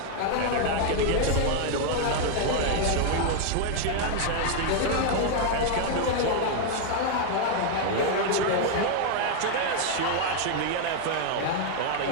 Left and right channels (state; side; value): different; both; correlation 0.00